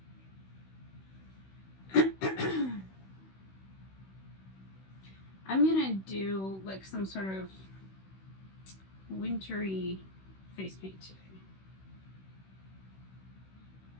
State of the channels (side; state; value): right; late; 16 ms